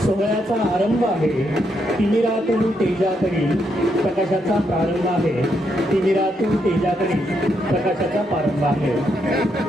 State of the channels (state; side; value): normal; both; correlation 0.78